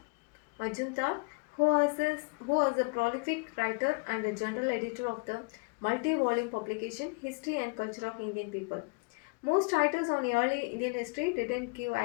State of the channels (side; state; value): right; quieter; 30.8 dB